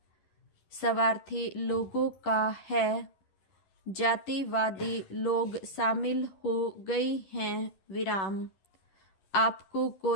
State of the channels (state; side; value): late; right; 10 ms